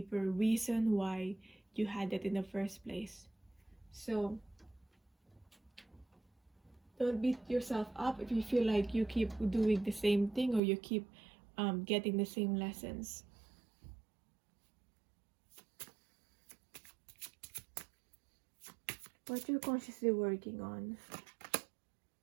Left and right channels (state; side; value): drops out; left; at 10.6 s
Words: reason why you had that in the first place. So don't beat yourself up if you feel like you keep doing the same thing or you keep getting the same lessons. What you're consciously working on